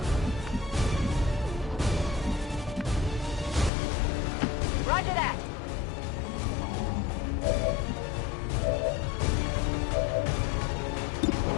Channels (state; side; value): drops out; right; at 3.7 s